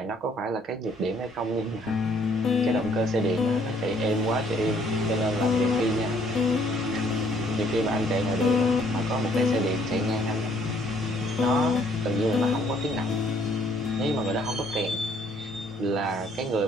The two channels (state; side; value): normal; both; correlation 0.63